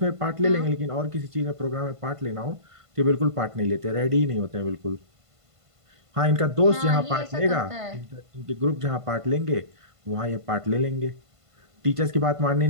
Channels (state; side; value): late; left; 1.5 ms